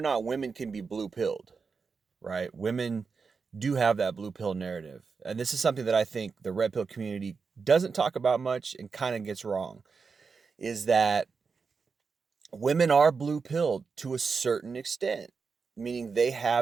women can be blue pilled, right? Women do have that blue pill narrative, and this is something that I think the red pill community doesn't talk about much and kind of gets wrong. Is that women are blue pilled to a certain extent, meaning they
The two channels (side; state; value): left; quieter; 5.1 dB